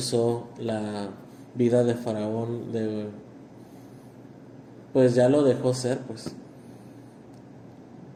la vida de Faraón pues ya lo dejó ser, pues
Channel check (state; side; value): identical; both; correlation 1.00